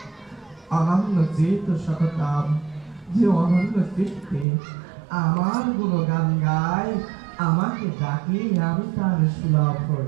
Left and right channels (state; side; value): drops out; left; at 4.5 s